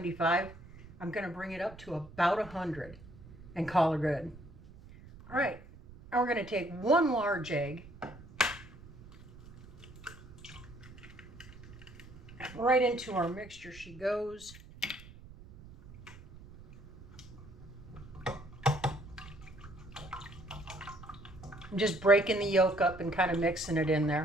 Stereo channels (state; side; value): noise; right; rumble, 18 dB below the sound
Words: I'm going to bring it up to about 100 and call it good. All right, now we're going to take 1 large egg. Right into our mixture she goes. I'm just breaking the yolk up and kind of mixing it in